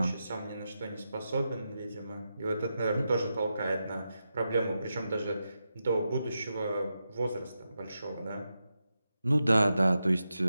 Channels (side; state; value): both; inverted; correlation -0.88